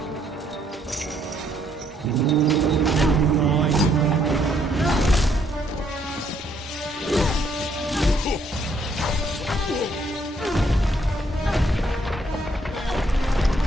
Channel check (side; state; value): both; normal; correlation 0.69